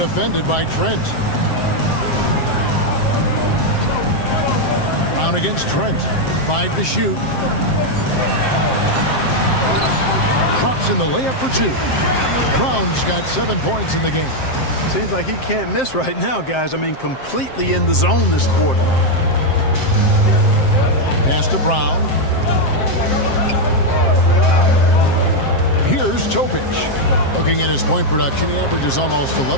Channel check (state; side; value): late; right; 7.6 ms